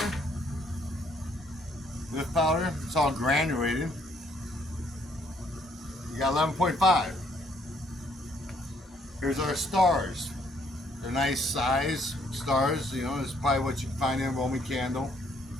Lift powder, it's all granulated. You got 11.5. Here's our stars. They're nice size stars, you know, it's probably what you can find in a Roman candle.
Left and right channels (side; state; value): both; normal; correlation 0.67